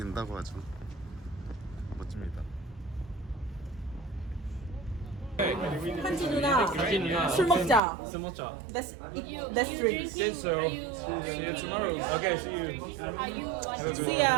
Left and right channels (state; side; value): drops out; left; at 7.8 s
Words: 하죠. 멋집니다. 한지 누나 술 먹자. 술 먹자. Let's drink. See you tomorrow. Okay, see you. Are you like See